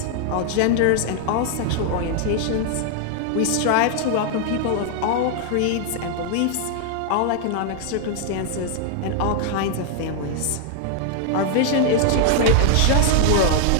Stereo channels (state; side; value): different; both; correlation 0.00